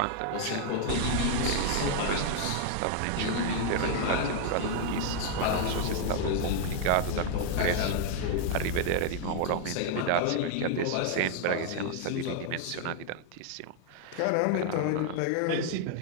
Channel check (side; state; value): both; different; correlation 0.00